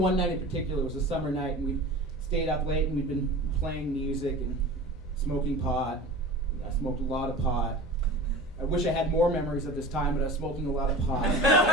night in particular, it was a summer night, and we stayed up late, and we'd been playing music and smoking pot. I smoked a lot of pot. I wish I had more memories of this time, but I was smoking a lot of pot.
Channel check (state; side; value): normal; both; correlation 0.36